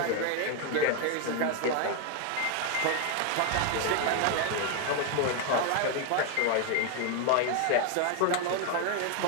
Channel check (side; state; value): both; different; correlation 0.01